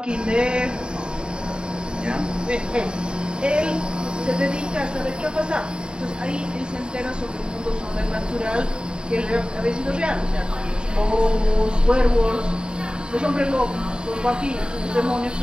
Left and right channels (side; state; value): left; late; 0.049 ms